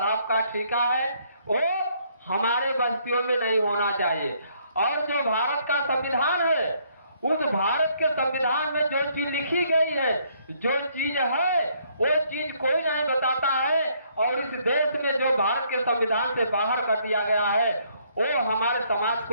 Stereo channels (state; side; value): inverted; both; correlation -0.68